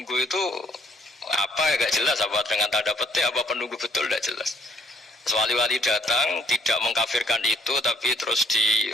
itu apa ya gak jelas, apa dengan tanda petik, apa penunggu betul gak jelas. Wali-wali datang tidak mengkafirkan itu, tapi terus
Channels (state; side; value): normal; both; correlation 0.66